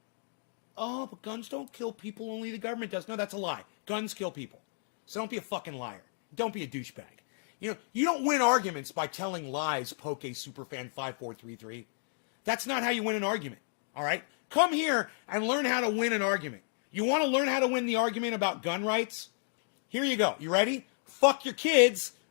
Oh, but guns don't kill people, only the government does. No, that's a lie. Guns kill people. So don't be a fucking liar. Don't be a douchebag. You know, you don't win arguments by telling lies, Poke Superfan 5433. That's not how you win an argument, all right? Come here and learn how to win an argument. You want to learn how to win the argument about gun rights? Here you go. You ready? Fuck your kids.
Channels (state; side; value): silent; right; digital silence